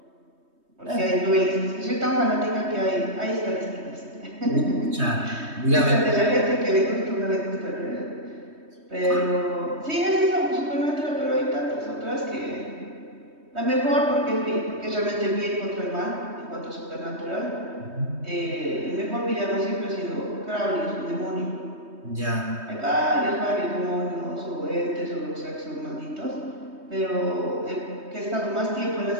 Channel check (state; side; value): late; left; 3.2 ms